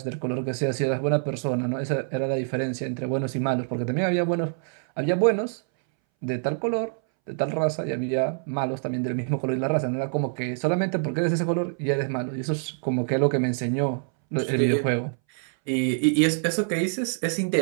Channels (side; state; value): left; silent; 61 dB below the other